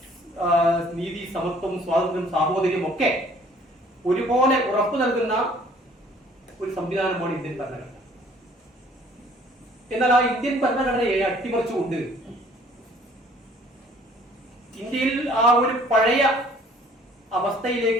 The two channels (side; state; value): both; normal; correlation 0.56